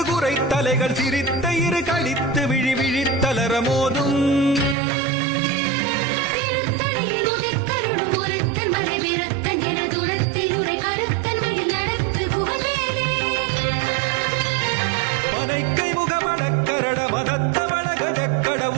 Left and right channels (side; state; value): left; drops out; at 4.8 s